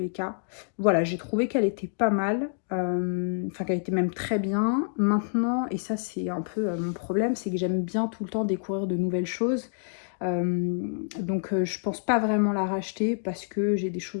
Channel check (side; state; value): right; silent; digital silence